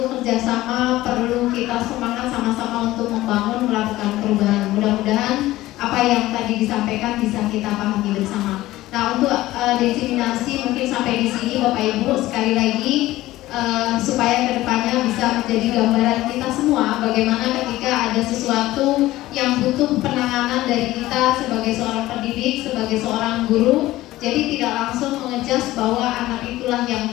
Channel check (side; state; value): right; quieter; 16.5 dB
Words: kerjasama, perlu kita semangat sama-sama untuk membangun, melakukan perubahan. Mudah-mudahan apa yang tadi disampaikan bisa kita pahami bersama. Nah, untuk diseminasi mungkin sampai di sini Bapak Ibu. Sekali lagi supaya kedepannya bisa menjadi gambaran kita semua bagaimana ketika ada sesuatu yang butuh penanganan dari kita sebagai seorang pendidik, sebagai seorang guru. Jadi tidak langsung mengejas bahwa anak itulah yang